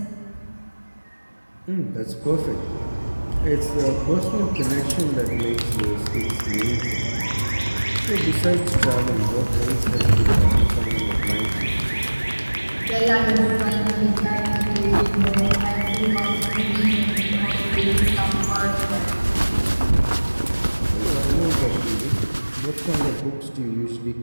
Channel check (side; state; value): both; inverted; correlation -1.00